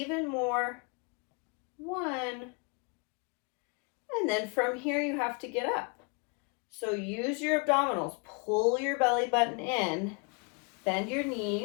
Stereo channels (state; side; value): quieter; right; 33.4 dB